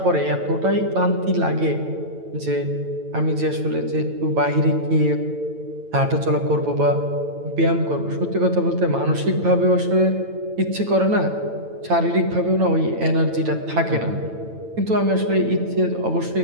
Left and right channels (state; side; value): late; left; 9.0 ms